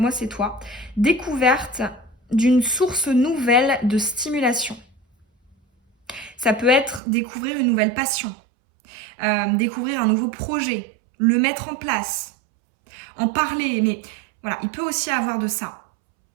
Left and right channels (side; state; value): left; drops out; at 7.0 s